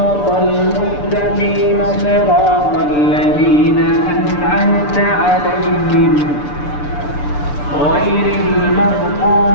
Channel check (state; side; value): late; right; 6.8 ms